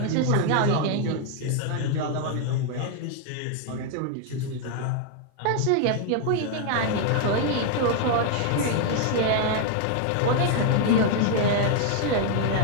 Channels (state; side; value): different; both; correlation 0.00